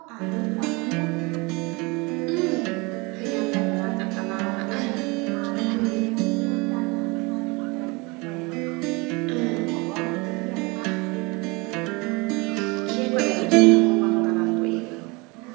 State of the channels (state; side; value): quieter; left; 26.8 dB